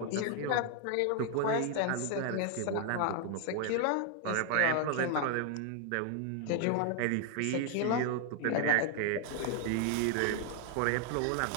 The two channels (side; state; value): both; different; correlation 0.00